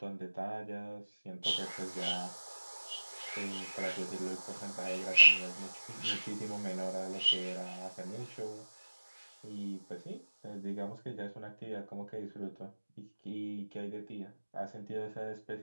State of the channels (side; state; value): both; inverted; correlation -1.00